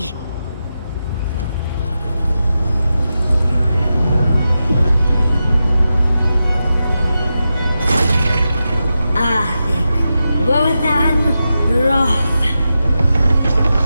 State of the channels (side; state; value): both; inverted; correlation -0.90